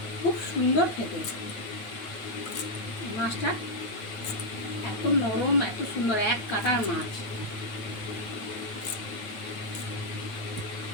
খুব সুন্দর খেতে। মাছটা এত নরম, এত সুন্দর, এক কাটার মাছ।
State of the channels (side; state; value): right; late; 9.0 ms